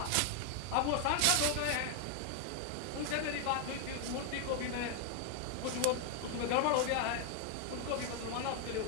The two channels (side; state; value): both; different; correlation 0.00